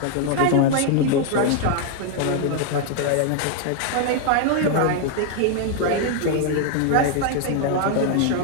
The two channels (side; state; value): both; different; correlation 0.00